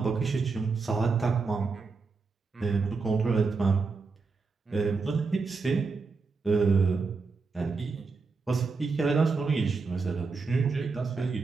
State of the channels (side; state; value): left; quieter; 4.4 dB